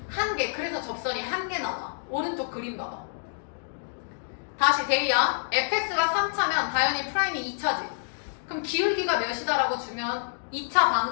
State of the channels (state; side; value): silent; right; digital silence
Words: 1개. 그래서 접선이 1개 나와. 오른쪽 그림 봐봐. 다시 데이야. fx가 3차면 다현이 프라임이 2차지. 그럼 기울기가 몇이다라고 주면 2차